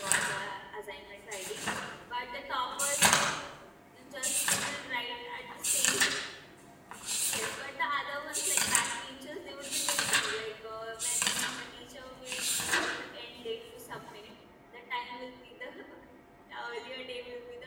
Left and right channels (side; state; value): both; identical; correlation 1.00